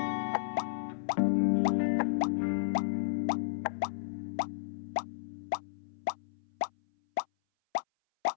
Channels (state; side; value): silent; right; 56 dB below the other